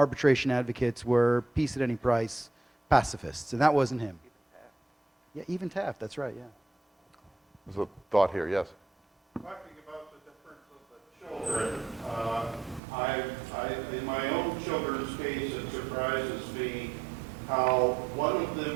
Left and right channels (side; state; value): left; drops out; at 12.8 s